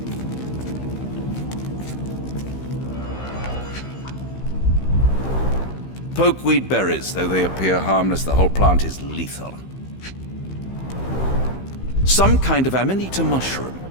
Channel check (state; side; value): late; right; 15 ms